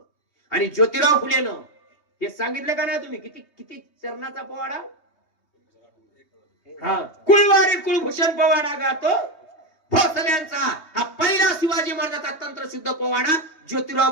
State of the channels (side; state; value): right; late; 3.2 ms